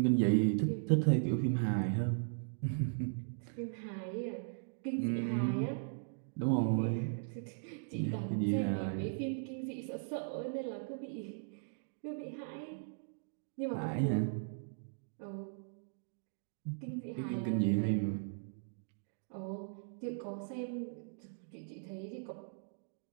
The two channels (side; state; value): left; silent; digital silence